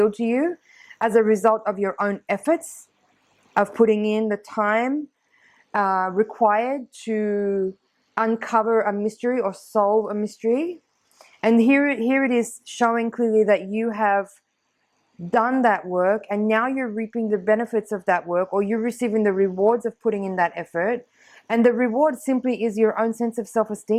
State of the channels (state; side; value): identical; both; correlation 1.00